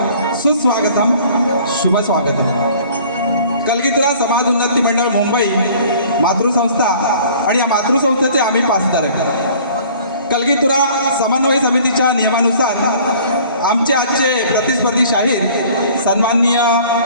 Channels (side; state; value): both; inverted; correlation -0.51